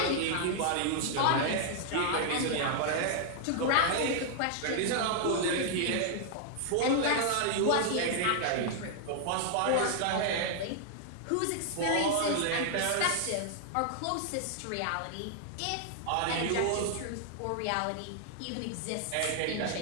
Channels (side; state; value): both; different; correlation -0.01